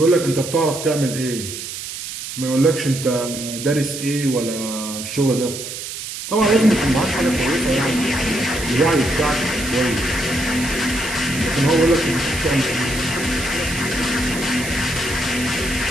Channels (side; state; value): right; noise; hiss, 8 dB below the sound